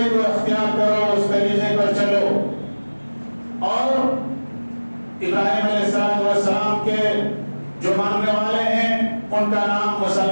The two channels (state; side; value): inverted; both; correlation -1.00